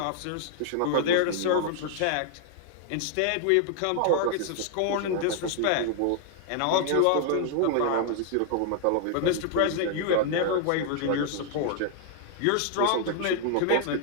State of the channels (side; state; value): both; different; correlation -0.01